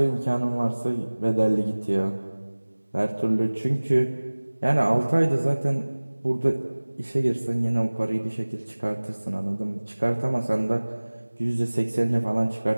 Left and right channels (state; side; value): inverted; both; correlation -1.00